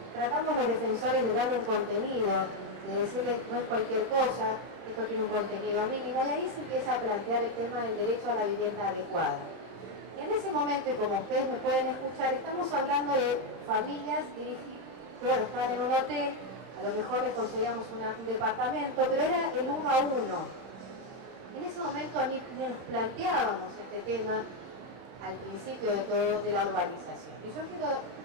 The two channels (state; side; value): late; left; 31 ms